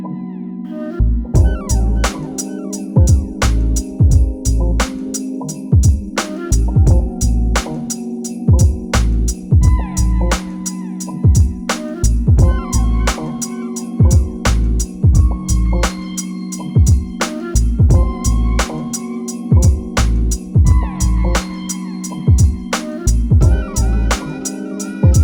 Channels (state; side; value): identical; both; correlation 1.00